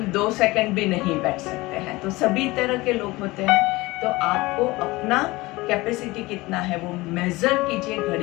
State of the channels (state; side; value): quieter; right; 21.1 dB